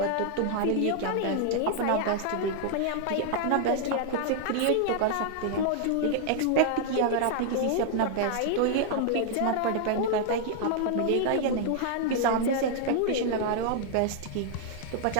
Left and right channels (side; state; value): both; different; correlation -0.01